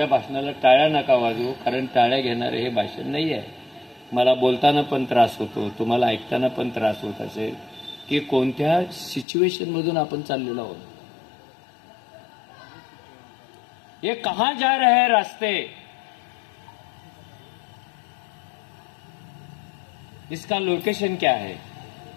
भाषणाला टाळ्या नका वाजवू, कारण टाळ्या घेणारे हे भाषण नाही आहे. मला बोलताना पण त्रास होतो, तुम्हाला ऐकताना पण त्रास होत असेल की कोणत्या सिच्युएशन मधून आपण चाललेलो आहोत. ये कहां जा रहे हैं रास्ते, इसका लोकेशन क्या है,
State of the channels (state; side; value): drops out; right; at 9.2 s